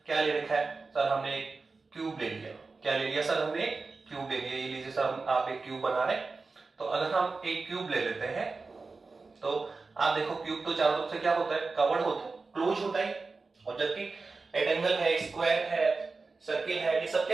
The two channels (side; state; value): left; quieter; 4.0 dB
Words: क्या ले रखा है, सर हमने एक क्यूब ले लिया, क्या ले लिया सर हमने क्यूब ले लिया, ये लीजिए सर आप एक क्यूब बना रहे हैं। तो अगर हम एक क्यूब ले लेते हैं तो आप देखो क्यूब तो चारों तरफ से क्या होता है कवर्ड होता है, क्लोज होता है, और जबकि रेक्टेंगल है, स्क्वायर है, सर्किल है, ये सब